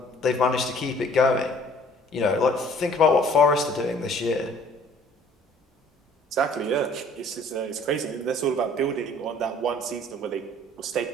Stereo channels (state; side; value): normal; both; correlation 0.55